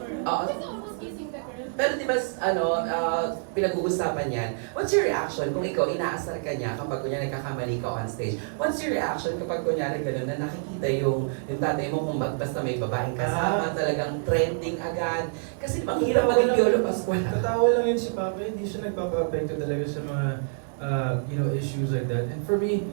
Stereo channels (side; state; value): left; silent; 60 dB below the other